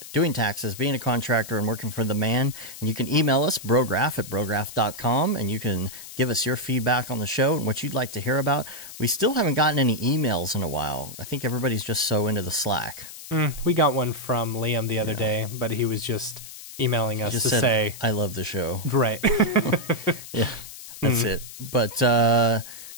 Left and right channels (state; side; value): noise; left; hiss, 14 dB below the sound